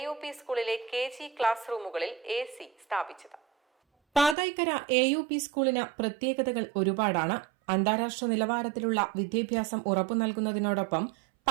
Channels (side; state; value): left; drops out; at 4.4 s